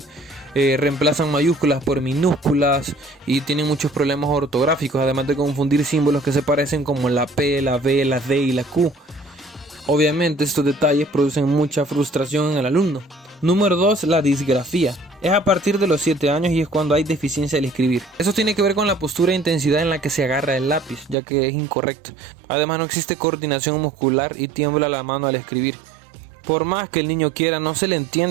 reemplazan mayúsculas por minúsculas y tienen muchos problemas ortográficos, además de confundir símbolos que se parecen como la P, la B, la D y la Q. Obviamente estos detalles producen mucha frustración en el alumno. Número 2, la disgrafía. Es a partir de los 7 años y es cuando hay deficiencia al escribir. Eso tiene que ver con la postura e intensidad en la que se agarra el lápiz, ya que es incorrecto. Además no existe coordinación muscular y tiembla la mano al escribir. Por más que el niño quiera, no se le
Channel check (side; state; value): left; drops out; at 21.2 s